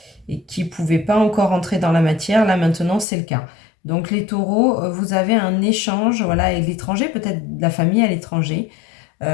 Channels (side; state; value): right; drops out; at 3.1 s